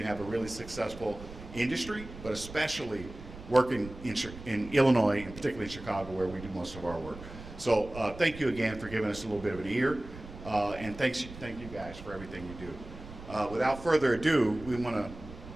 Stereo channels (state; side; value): noise; right; rumble, 14 dB below the sound